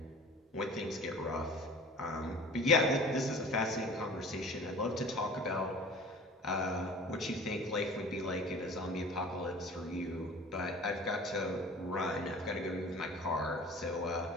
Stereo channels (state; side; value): normal; both; correlation 0.43